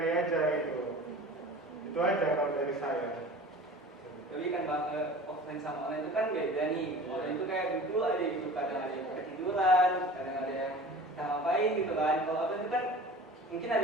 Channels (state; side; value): normal; both; correlation 0.40